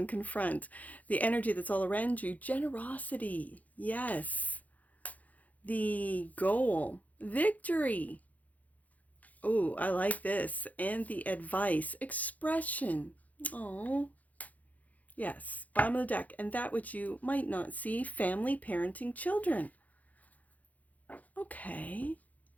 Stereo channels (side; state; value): right; late; 0.077 ms